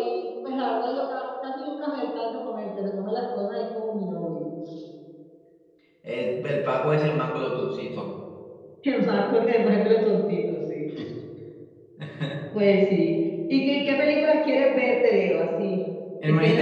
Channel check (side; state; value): both; identical; correlation 1.00